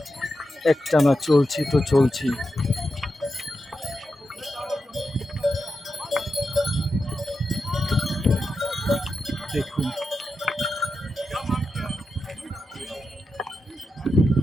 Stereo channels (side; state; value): both; normal; correlation 0.88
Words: একটানা চলছি তো চলছি। দেখুন